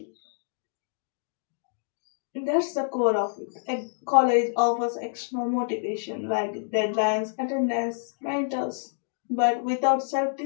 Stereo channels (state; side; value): silent; right; digital silence